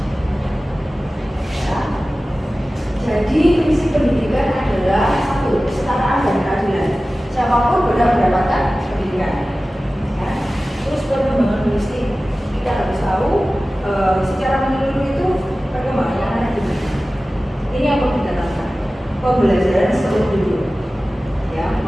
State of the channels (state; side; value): normal; both; correlation 0.96